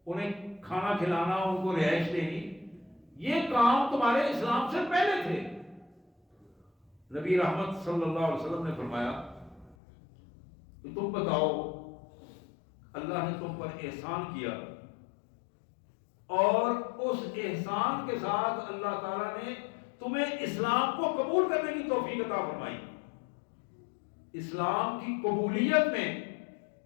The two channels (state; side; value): drops out; right; at 9.8 s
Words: انہیں کھانا کھلانا، ان کو رہائش دینی. یہ کام تمہارے اسلام سے پہلے تھے. نبی رحمت صلی اللہ علیہ وسلم نے فرمایا کہ تم بتاؤ اللہ نے تم پر احسان کیا، اور اس احسان کے ساتھ اللہ تعالیٰ نے تمہیں اسلام کو قبول کرنے کی توفیق عطا فرمائی. اسلام کی قبولیت میں